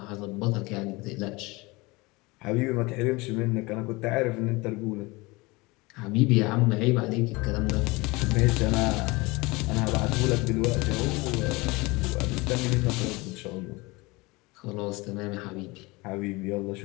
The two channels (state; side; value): quieter; right; 23.9 dB